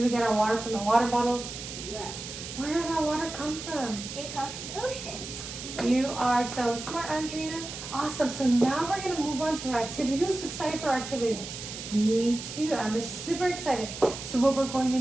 we get our water from the water bottles? No. Where does our water come from? It comes from the ocean. You are so smart, Andrina. Awesome. So now we're going to move on to our activity. Who's excited for our activity? Me too. I'm super excited. So what we're going to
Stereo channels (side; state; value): right; noise; hiss, 9 dB below the sound